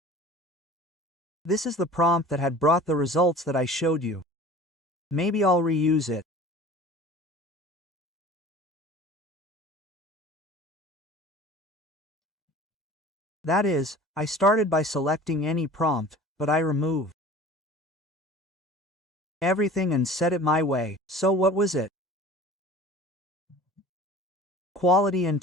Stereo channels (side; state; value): both; normal; correlation 0.43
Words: This is the prompt that had brought the results that I showed you. Maybe I'll reuse it. That is, I started by selecting any prompt, but I remove everything and set it my way. So what was it? Quality